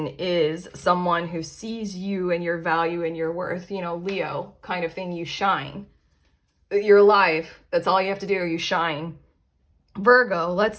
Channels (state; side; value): identical; both; correlation 1.00